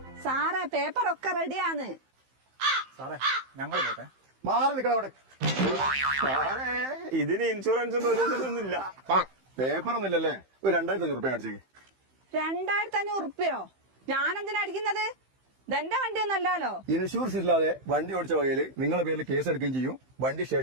സാറേ പേപ്പറൊക്കെ റെഡിയാന്ന്. സാറേ ഞങ്ങൾ പോട്ടെ. മാറി നിൽക്കണം അവിടെ. ഇതിന് ഇൻഷുറൻസ് ഒന്നുമില്ല. പേപ്പർ ഒന്നുമില്ലല്ലേ? ഒരു 2500 രൂപ അടിച്ചേക്ക്. 2500 ഉറുപ്പ്യോ? ഞാനെന്തിനാ അടിക്കുന്നത്? ഇതെന്റെ വണ്ടിയൊന്നല്ലോ. ഇൻഷുറൻസ് ഇല്ലാതെ വണ്ടി ഓടിച്ച വകയില് നിങ്ങളുടെ പേരിൽ കേസ് എടുക്കുകയും ചെയ്യും, വണ്ടി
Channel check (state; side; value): late; left; 15 ms